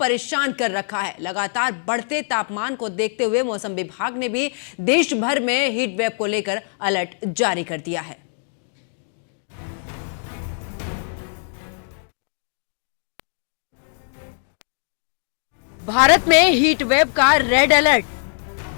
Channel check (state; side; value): silent; right; digital silence